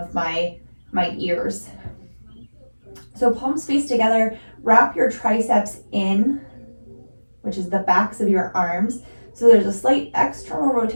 my ears. So palms face together, wrap your triceps in, which is the backs of your arms. So there's a slight external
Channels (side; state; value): both; inverted; correlation -1.00